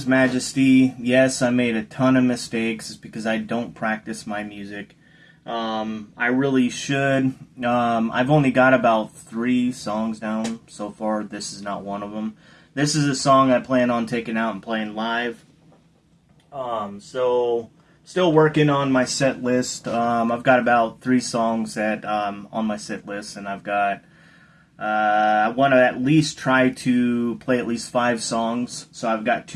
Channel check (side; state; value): both; identical; correlation 1.00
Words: Majesty. Yes, I made a ton of mistakes because I don't practice my music. I really should. I've only got about 3 songs down so far. This is not one of them. This is a song I plan on taking out and playing live. So still working on my set list. I've got about 3 songs that on my set list, and I've got I want to at least try to play at least 5 songs. So I've got